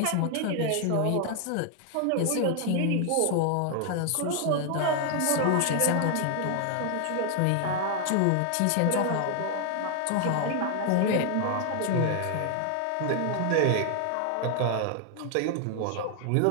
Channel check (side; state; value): both; different; correlation 0.00